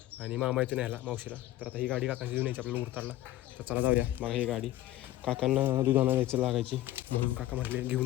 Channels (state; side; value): quieter; right; 14.9 dB